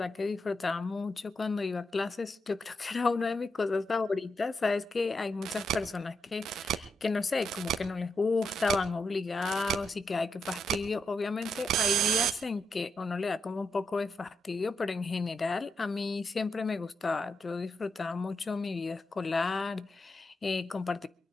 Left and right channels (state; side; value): normal; both; correlation 0.84